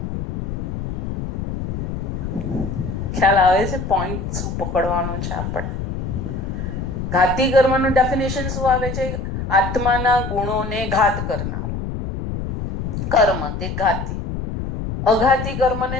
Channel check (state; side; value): noise; left; rumble, 4 dB below the sound